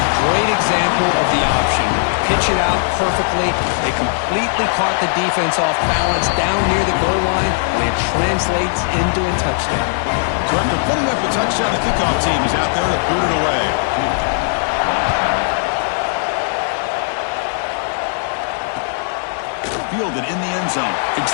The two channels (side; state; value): right; silent; digital silence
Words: great example of the option. Pitch it out perfectly. They completely caught the defense off balance down near the goal line, and it translates into a touchdown. So after putting up the touchdown, the kickoff team is out there to boot it away. Fielded in the end zone. It's